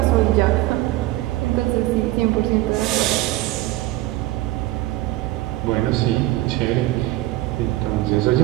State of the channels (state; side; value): quieter; left; 17.3 dB